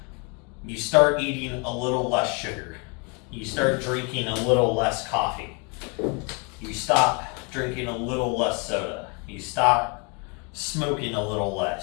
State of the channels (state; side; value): quieter; right; 33.5 dB